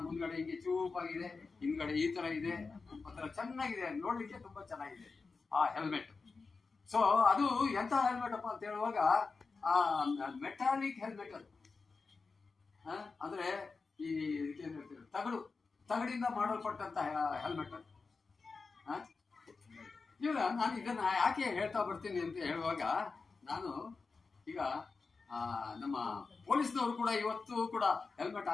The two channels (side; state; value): right; quieter; 4.4 dB